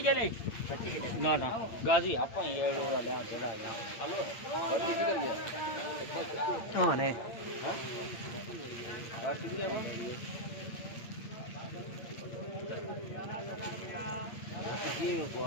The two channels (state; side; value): late; right; 8.7 ms